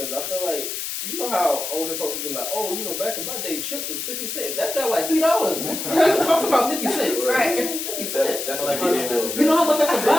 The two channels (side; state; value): left; noise; hiss, 5 dB below the sound